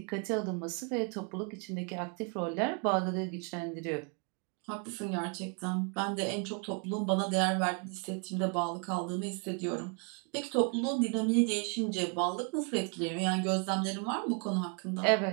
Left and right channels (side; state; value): left; quieter; 36.5 dB